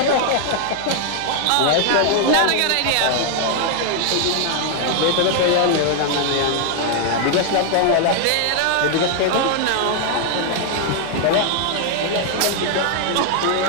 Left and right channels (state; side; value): different; both; correlation 0.00